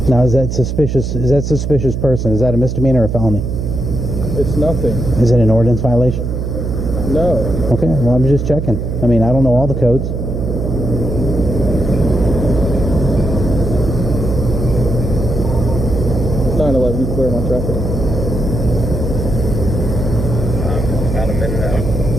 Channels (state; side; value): noise; right; hum, 3 dB below the sound